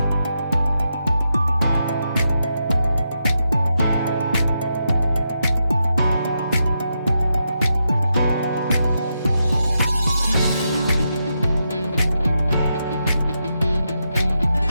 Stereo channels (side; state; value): both; inverted; correlation -0.85